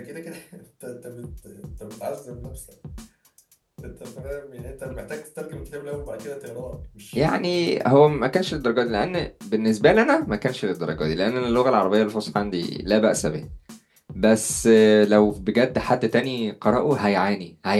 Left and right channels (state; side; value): identical; both; correlation 1.00